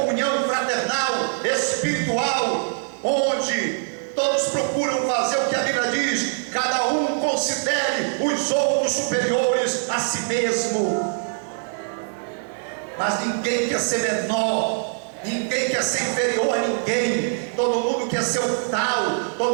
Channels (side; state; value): left; silent; digital silence